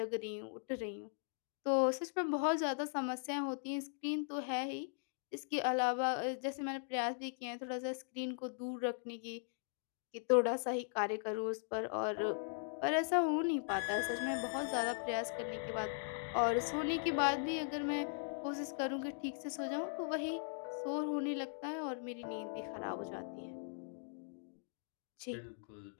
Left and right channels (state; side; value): silent; right; digital silence